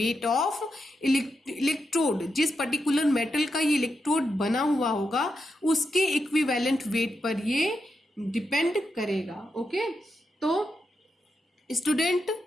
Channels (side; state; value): both; normal; correlation 0.85